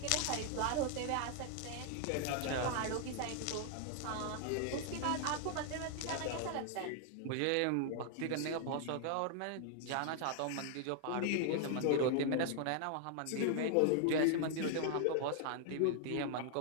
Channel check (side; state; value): both; different; correlation 0.00